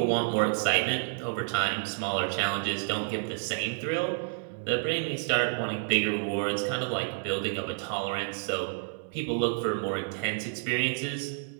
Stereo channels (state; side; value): silent; left; 58 dB below the other